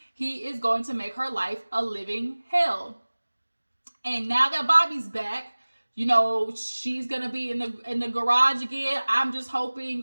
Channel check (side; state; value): both; inverted; correlation -1.00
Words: He is going to make her life a living hell. And now that Bobby's back, you know, she's going to be in the garage again. I'm just